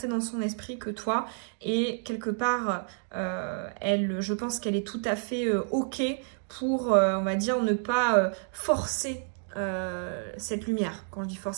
dans son esprit que toi et quelque part, je pense qu'elle est tout à fait OK pour, on va dire, ne pas forcer cette lumière. Quand je dis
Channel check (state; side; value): silent; left; 58 dB below the other